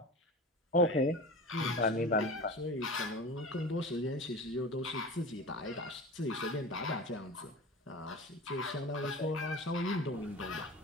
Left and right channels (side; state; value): both; normal; correlation 0.32